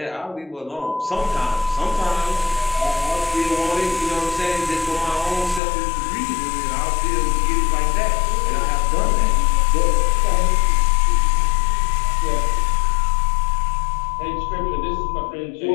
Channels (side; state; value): right; drops out; at 5.6 s